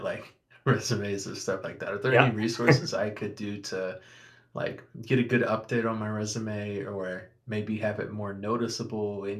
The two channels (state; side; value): identical; both; correlation 1.00